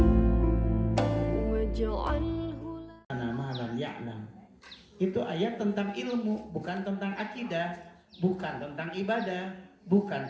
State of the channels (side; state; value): both; identical; correlation 1.00